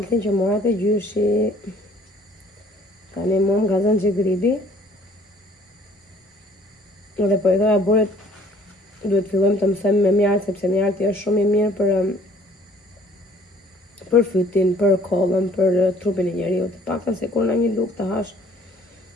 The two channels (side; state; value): both; normal; correlation 0.56